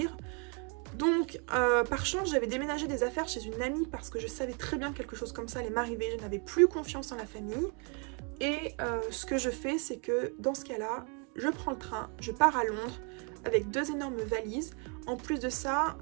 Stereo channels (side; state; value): left; quieter; 36.6 dB